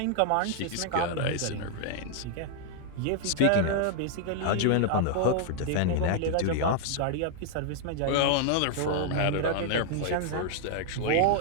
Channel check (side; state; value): both; different; correlation 0.00